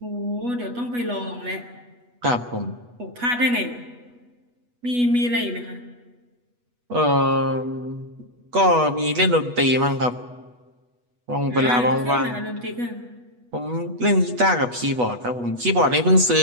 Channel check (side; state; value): left; late; 8.2 ms